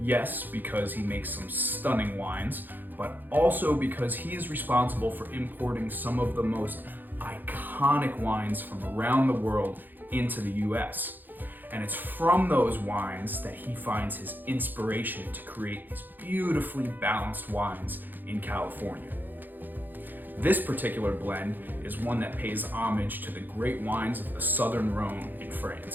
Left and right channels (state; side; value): late; left; 0.088 ms